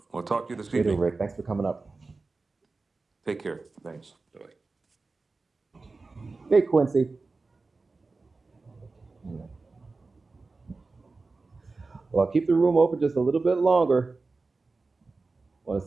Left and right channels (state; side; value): quieter; left; 3.8 dB